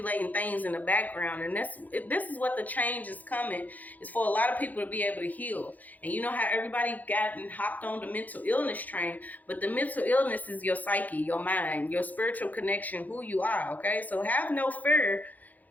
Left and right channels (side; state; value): right; late; 0.081 ms